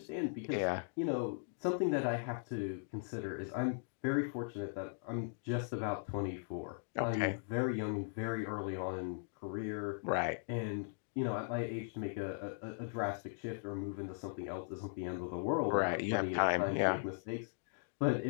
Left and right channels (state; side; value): silent; right; digital silence